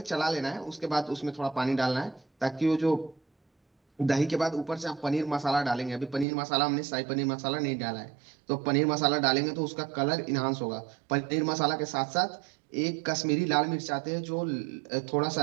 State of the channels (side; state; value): left; drops out; at 6.2 s